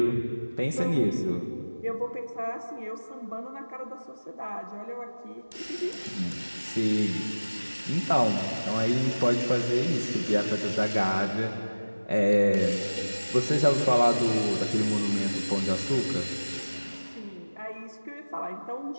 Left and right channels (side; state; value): both; inverted; correlation -1.00